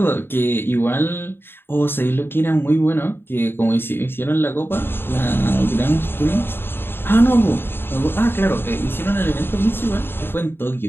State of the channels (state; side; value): late; right; 0.11 ms